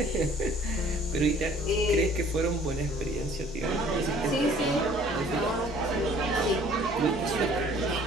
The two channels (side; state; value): both; normal; correlation 0.54